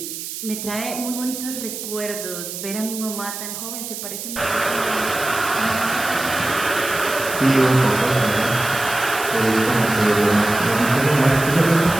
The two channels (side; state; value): right; noise; hiss, 8 dB below the sound